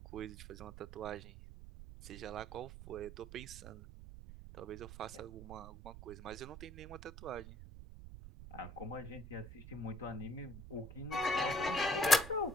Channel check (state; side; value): noise; right; rumble, 12 dB below the sound